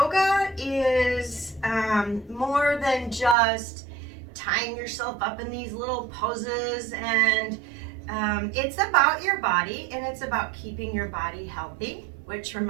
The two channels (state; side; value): drops out; left; at 3.4 s